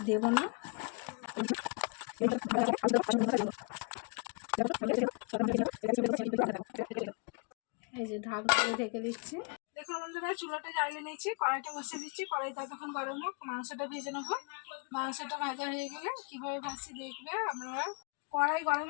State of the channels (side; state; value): right; quieter; 36.6 dB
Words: দেব না। এই যে ঢাকনা দিয়ে ঢেকে দিচ্ছি। দেখুন বন্ধুরা, চুলাটা জ্বালিয়ে নিয়েছি, কড়াইটা বসিয়ে দিচ্ছি। কড়াইটা তখন গরম হোক, মাংসটা ভেজে নেবো। মাংসটা ভাজা হয়ে গেলে কীভাবে ভাজছি দেখবে আপনারা। কড়াই গরম